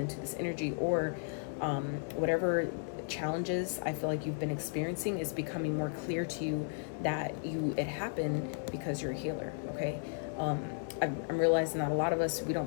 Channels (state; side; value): silent; right; digital silence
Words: this energy, or whatever challenges I feel like you've been experiencing is becoming more clear to you that it happened because you're a healer, okay? I'm realizing that a lot of us, we